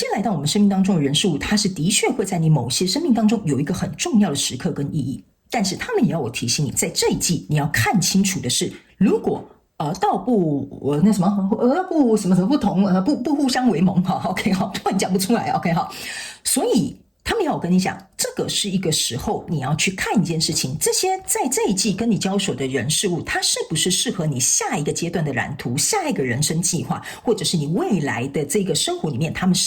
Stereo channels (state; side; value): identical; both; correlation 1.00